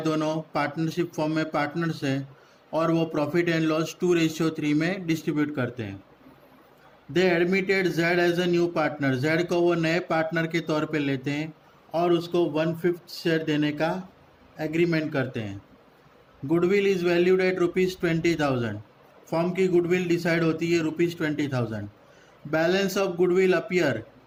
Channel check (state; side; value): identical; both; correlation 1.00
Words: दोनों partnership form में partners हैं और वो profit and loss 2:3 में distribute करते हैं. They admitted Z as a new partner. Z को वो नए पार्टनर के तौर पे लेते हैं और उसको 1/5 शेयर देने का एग्रीमेंट करते हैं. Goodwill is valued at ₹20,000. Form की गुडविल डिसाइड होती है ₹20,000. Balance of goodwill appear